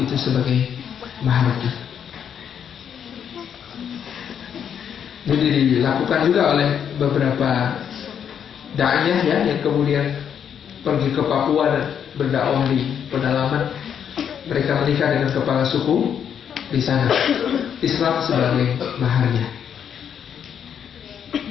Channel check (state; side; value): quieter; right; 8.3 dB